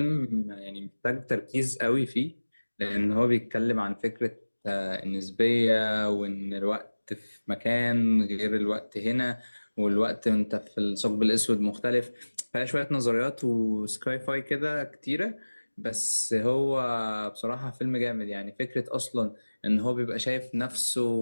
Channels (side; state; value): both; inverted; correlation -1.00